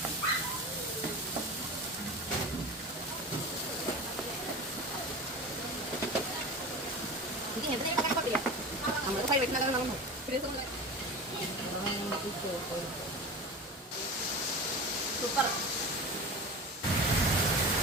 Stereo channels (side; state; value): both; normal; correlation 0.31